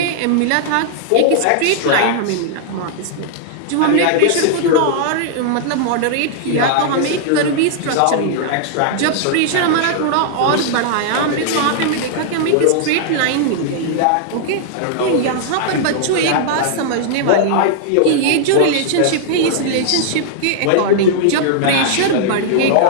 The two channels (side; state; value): both; different; correlation -0.01